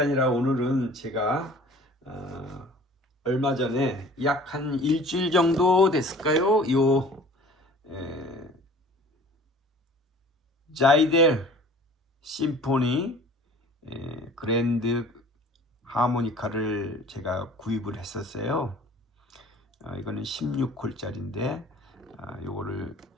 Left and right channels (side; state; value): both; normal; correlation 0.47